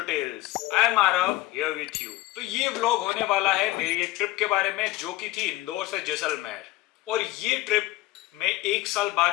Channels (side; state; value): right; quieter; 18.0 dB